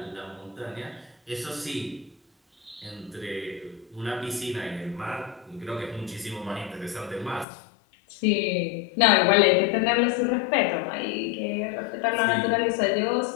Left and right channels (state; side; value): drops out; right; at 7.5 s